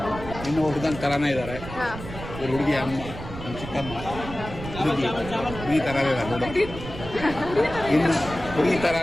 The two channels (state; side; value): noise; right; rumble, 11 dB below the sound